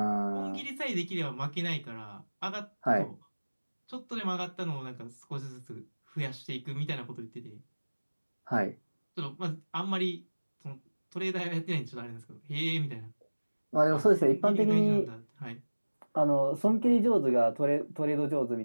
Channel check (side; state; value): both; inverted; correlation -1.00